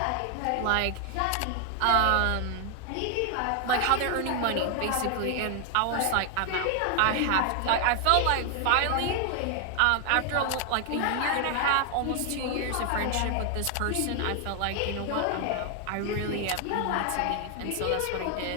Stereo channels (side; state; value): both; different; correlation 0.00